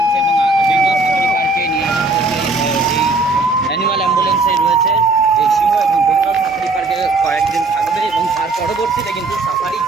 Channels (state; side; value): quieter; left; 3.3 dB